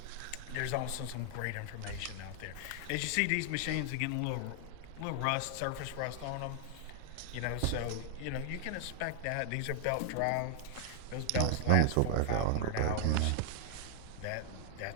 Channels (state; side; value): different; both; correlation 0.00